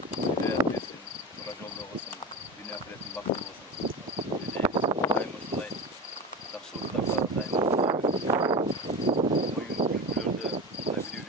hidayet versin. Tura jolda olsun. Dünya ahiretin baktı olsun. Daim uşunday жақсылықтарга daim oyun kültürlerde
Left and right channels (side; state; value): both; normal; correlation 0.26